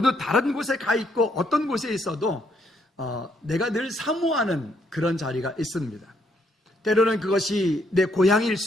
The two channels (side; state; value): both; normal; correlation 0.72